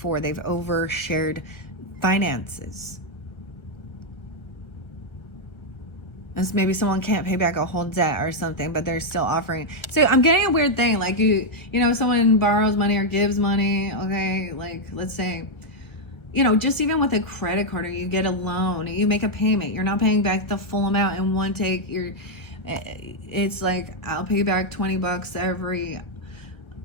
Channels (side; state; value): right; late; 1.2 ms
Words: they've overshared finances. And maybe someone can't pay back a whole debt or something, but they're still offering. So I'm getting a weird thing, like someone borrows money or gives money, okay? Like, let's say, just even with a credit card or you get a loan, you make a payment, you're not paying back the full amount in one take. It's like, I'll pay back $20